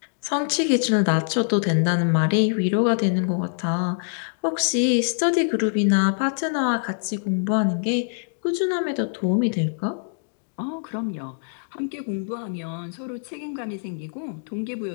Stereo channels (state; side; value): silent; right; digital silence